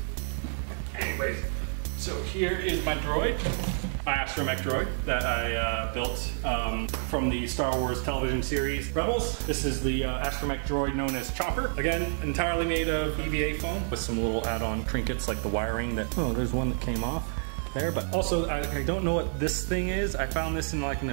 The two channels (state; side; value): silent; left; 59 dB below the other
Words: Anyways, so here is my droid, my astromech droid that I built from the Star Wars television series Rebels. This is the astromech droid known as Chopper. Again, entirely made of EVA foam with some little add-on trinkets like the wiring that, oh, there's one that came off there, but also I don't know what this thing is. I found this in like an